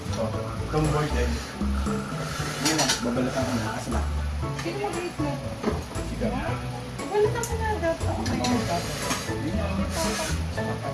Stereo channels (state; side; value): identical; both; correlation 1.00